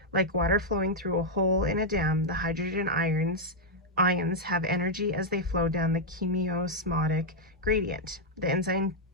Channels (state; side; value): normal; both; correlation -0.03